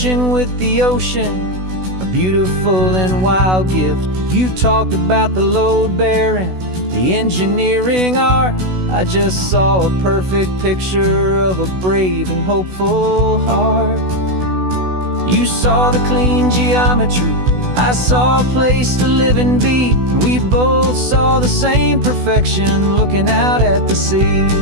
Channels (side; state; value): left; late; 16 ms